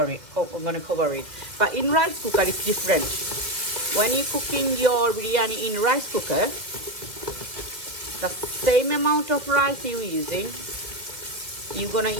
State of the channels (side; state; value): left; late; 2.3 ms